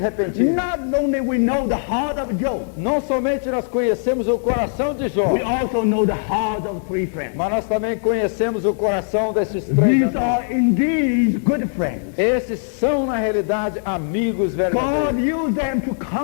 not only we know the heart of Job, não somente nós conhecemos o coração de Jó, we also know the heart of 3 friends. mas nós também conhecemos o coração desses 3 These amigos. are indeed good friends. Esses são, na realidade, amigos God verdadeiros. used them to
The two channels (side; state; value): right; silent; digital silence